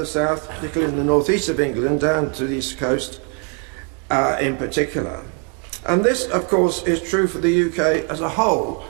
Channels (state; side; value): quieter; left; 36.1 dB